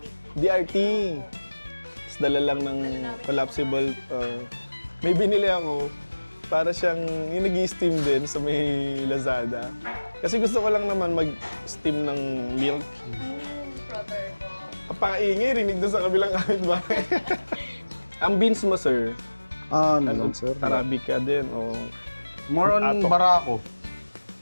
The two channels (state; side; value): inverted; both; correlation -1.00